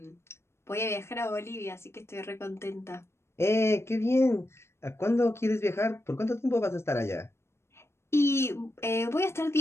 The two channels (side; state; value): right; late; 0.13 ms